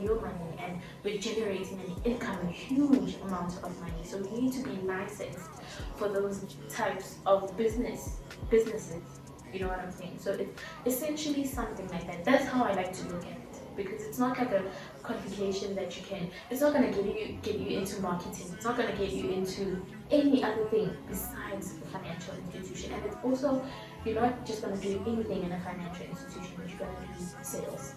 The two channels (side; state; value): both; identical; correlation 1.00